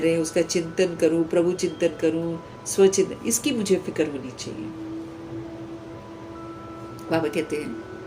रहे हैं उसका चिंतन करूं, प्रभु चिंतन करूं, स्वचिंतन, इसकी मुझे फिक्र होनी चाहिए। बाबा कहते हैं,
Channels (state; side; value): identical; both; correlation 1.00